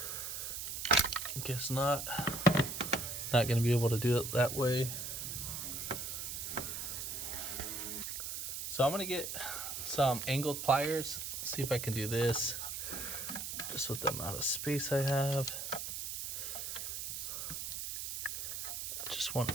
Guess not. Not going to be able to do it that way. So I'm going to get some angled pliers. See if I can do this just with the amount of space I have. I just want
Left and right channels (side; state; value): right; noise; hiss, 5 dB below the sound